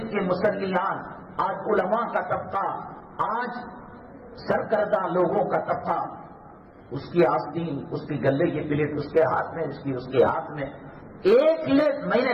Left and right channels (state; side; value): identical; both; correlation 1.00